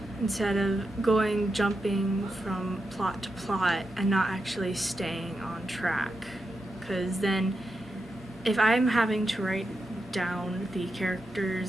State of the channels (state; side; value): normal; both; correlation 0.87